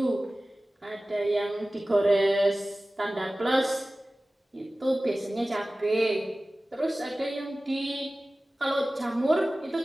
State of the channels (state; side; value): normal; both; correlation 0.97